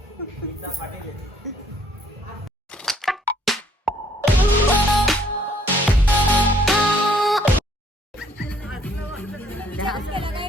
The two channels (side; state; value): both; normal; correlation 0.64